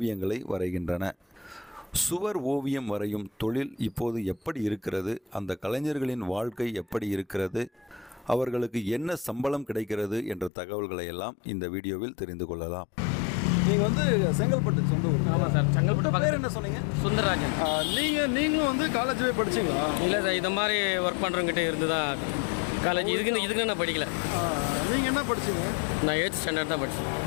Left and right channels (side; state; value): right; drops out; at 10.5 s